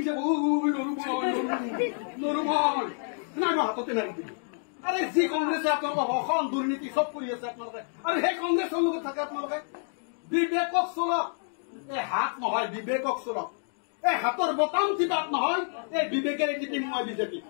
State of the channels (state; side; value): silent; right; digital silence